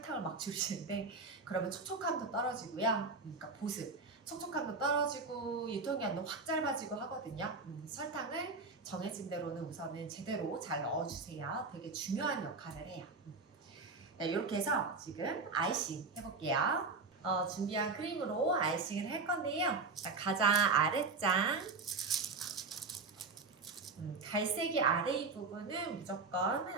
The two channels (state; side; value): quieter; left; 4.0 dB